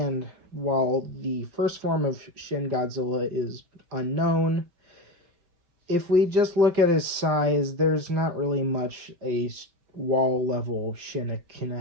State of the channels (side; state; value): left; late; 5.8 ms